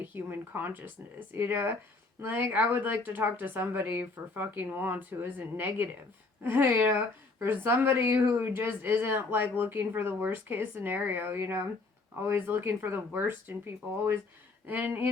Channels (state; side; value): quieter; right; 3.6 dB